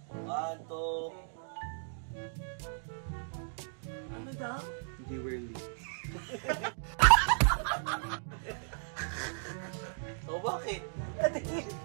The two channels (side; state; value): left; silent; digital silence